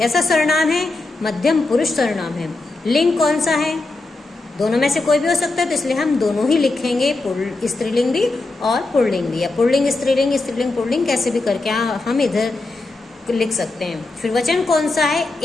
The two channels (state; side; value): quieter; right; 3.2 dB